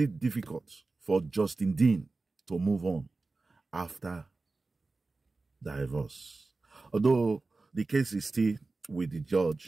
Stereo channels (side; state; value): left; quieter; 3.6 dB